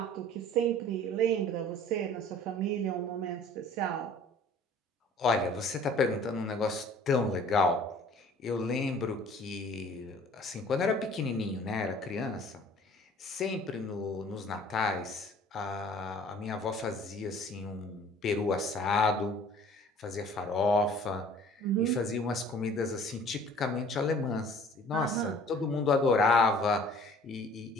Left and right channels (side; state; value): both; normal; correlation 0.50